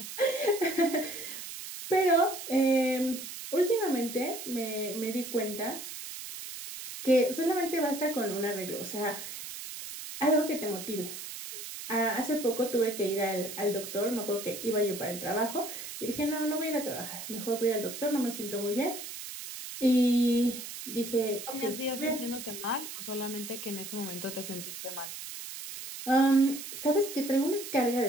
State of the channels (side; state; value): right; noise; hiss, 9 dB below the sound